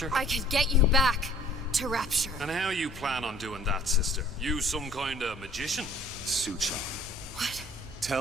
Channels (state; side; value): normal; both; correlation 0.53